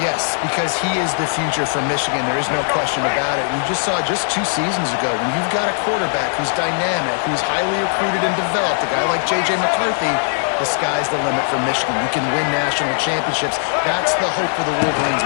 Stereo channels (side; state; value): right; silent; 67 dB below the other